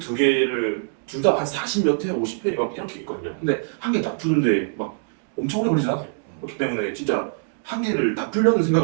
개를 둘 다 한 40몇 회, 50회 막 이렇게 있거든요. 근데 한 개 다 푸는데 막 엄청 오래 걸리지 않아요. 그렇기 때문에 진짜 한 개를 다 풀려는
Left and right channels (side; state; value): left; silent; digital silence